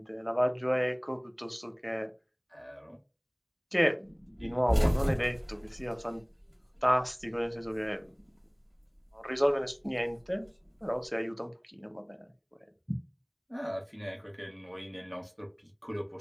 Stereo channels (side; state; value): both; identical; correlation 1.00